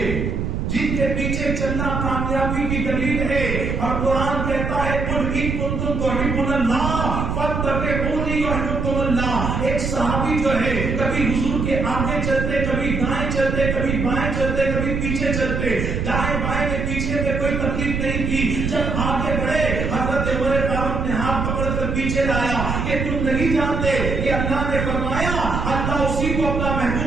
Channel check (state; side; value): noise; right; rumble, 2 dB below the sound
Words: جن کے پیچھے چلنا کامیابی کی دلیل ہے. اور قرآن کہتا ہے قل ان کنتم تحبون اللہ فاتبعونی یحببکم اللہ. ایک صحابی جو ہے کبھی حضور کے آگے چلتے، کبھی دائیں چلتے، کبھی بائیں چلتے، کبھی پیچھے چلتے. دائیں بائیں میں پیچھے میں کوئی تکلیف نہیں کی. جب آگے بڑھے حضرت عمر فاروق نے ہاتھ پکڑ کر پیچھے لایا کہ تم نہیں جانتے کہ اللہ نے فرمایا اللہ اسی کو اپنا